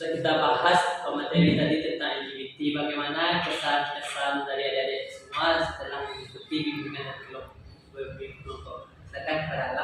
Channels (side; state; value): both; identical; correlation 1.00